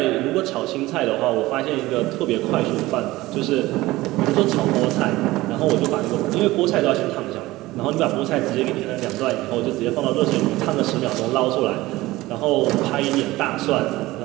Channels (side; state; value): left; quieter; 18.5 dB